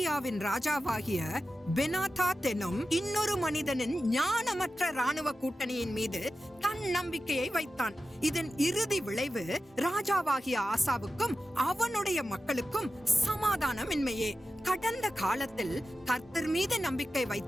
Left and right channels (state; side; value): normal; both; correlation 0.93